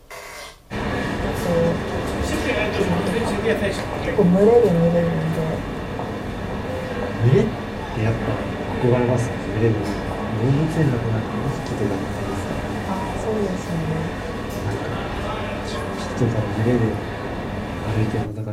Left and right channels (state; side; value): identical; both; correlation 1.00